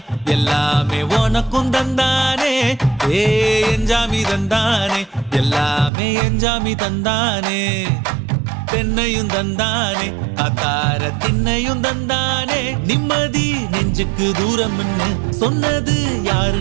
எல்லாமே உனக்கும் தந்தானே ஏ எஞ்சாமி தந்தானே எல்லாமே எஞ்சாமி தந்தானே தென்னையும் தந்தானே அத்தார திண்ணையும் தந்தானே நிம்மதி நெஞ்சுக்கு தூரம்னு சொன்னது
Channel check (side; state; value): left; drops out; at 5.9 s